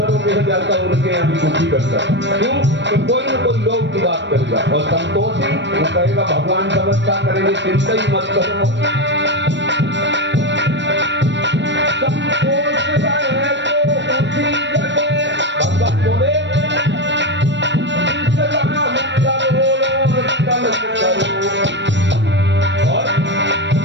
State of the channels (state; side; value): late; left; 0.53 ms